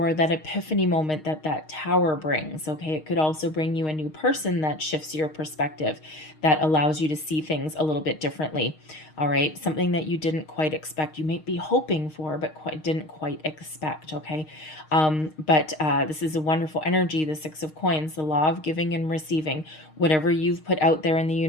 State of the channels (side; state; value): right; late; 6.5 ms